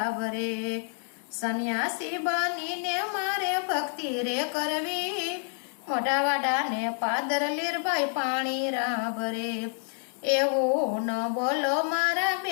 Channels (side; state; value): right; silent; 58 dB below the other